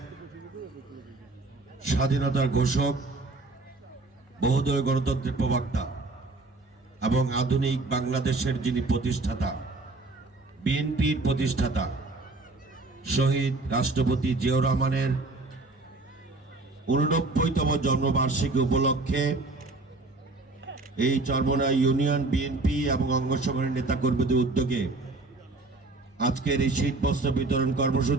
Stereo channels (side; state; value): left; quieter; 3.3 dB